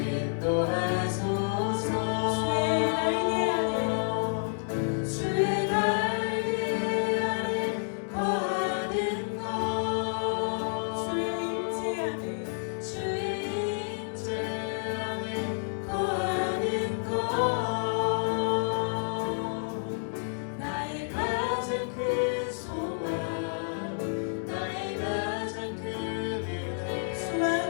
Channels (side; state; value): right; silent; digital silence